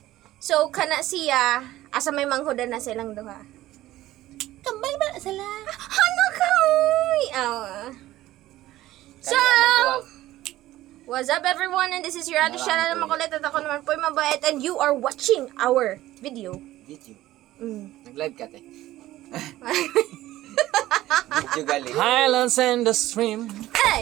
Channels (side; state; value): left; quieter; 15.5 dB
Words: So, kana siya, asa may manghudan na silang duha. Kambal ba sila? Ano ka? So, what's up everyone? And this is your other channel na makulit at ako naman po yung mabait. And you are watching our video. Video. Mm. Nag-live ka, te. Video gali. Highlands and the stream.